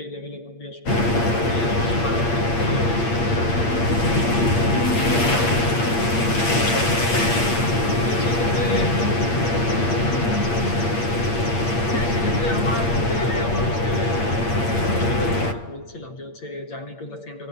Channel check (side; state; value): right; late; 8.6 ms